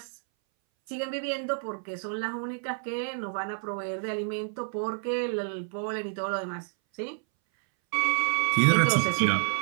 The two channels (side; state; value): left; silent; 59 dB below the other